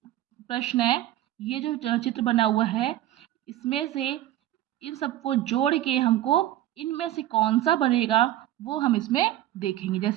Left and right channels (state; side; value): quieter; left; 13.8 dB